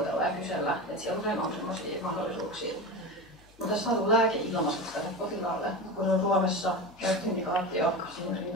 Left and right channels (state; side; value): noise; left; hum, 27 dB below the sound